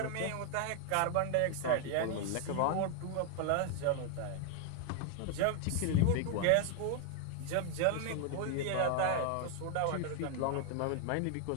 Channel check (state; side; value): different; both; correlation 0.00